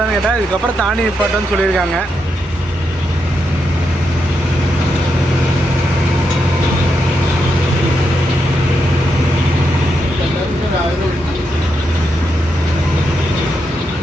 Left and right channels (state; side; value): normal; both; correlation 0.83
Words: கேட்டால் இதுக்கப்புறம் தாண்டி நிப்பாட்டுன்னு சொல்லியிருக்காங்க.